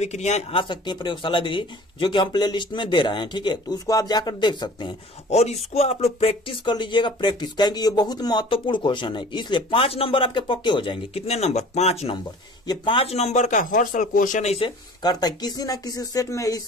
आ सकती हैं प्रयोगशाला विधि, जो कि हम प्ले लिस्ट में दे रहे हैं। ठीक है, तो उसको आप जाकर देख सकते हैं और इसको आप लोग प्रैक्टिस कर लीजिएगा। प्रैक्टिस कहेंगे, ये बहुत महत्वपूर्ण क्वेश्चन है, इसलिए 5 नंबर आपके पक्के हो जाएंगे। कितने नंबर? 5 नंबर। ये 5 नंबर का हर साल क्वेश्चन ऐसे करता है, किसी ना किसी सेट में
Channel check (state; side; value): normal; both; correlation 0.45